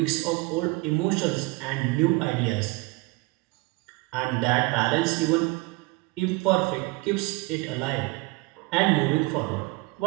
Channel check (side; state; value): left; quieter; 23.4 dB